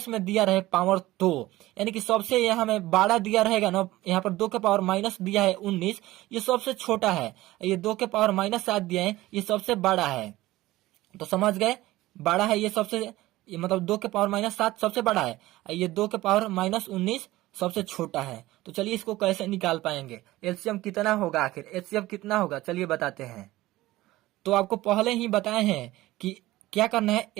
में दिया रहे पावर तो, यानी कि सबसे यहाँ में बड़ा दिया रहेगा ना, यहाँ पर 2 के पावर माइनस दिया है 19, ये सबसे छोटा है। ये 2 के पावर माइनस 7 दिया है, ये सबसे बड़ा है। तो समझ गए, बड़ा है ये सबसे, ये मतलब 2 के पावर माइनस 7 सबसे बड़ा है, ये 2 के पावर माइनस 19 सबसे छोटा है। तो चलिए इसको कैसे निकाल पाएंगे, एलसीएम कितना होगा, आखिर एचसीएफ कितना होगा, चलिए बताते हैं। तो आपको पहले ही बताए हैं कि क्या करना है,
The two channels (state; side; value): quieter; left; 17.3 dB